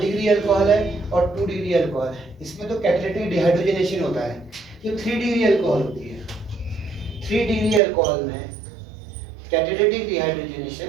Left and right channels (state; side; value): drops out; left; at 7.8 s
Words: अल्कोहल है और 2 डिग्री अल्कोहल है, इसमें तो कैटालिटिक डिहाइड्रोजनेशन होता है। ये 3 डिग्री अल्कोहल होती है, 3 डिग्री अल्कोहल में कैटालिटिक